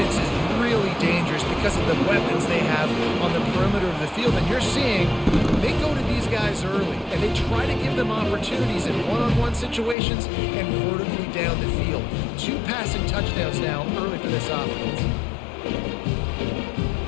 is really dangerous because of the weapons they have on the perimeter of the field. And you're seeing they go to these guys early, and they try to give them opportunities in one-on-one situations and vertically down the field. 2 passing touchdowns now early for this offense.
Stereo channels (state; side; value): drops out; right; at 10.0 s